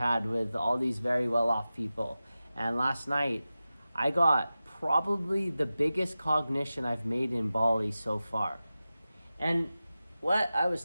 with all these very well-off people. And last night, I got probably the biggest cognition I've made in Bali so far. And what I was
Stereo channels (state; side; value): inverted; both; correlation -0.94